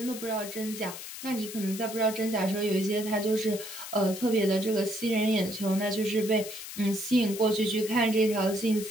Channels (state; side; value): noise; left; hiss, 10 dB below the sound